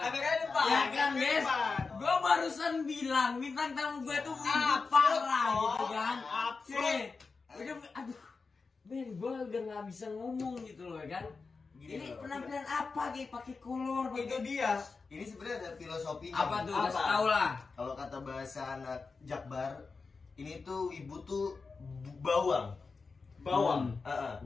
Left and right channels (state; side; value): quieter; right; 4.5 dB